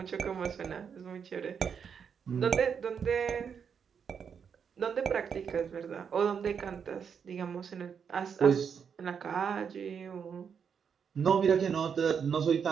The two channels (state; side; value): quieter; left; 6.9 dB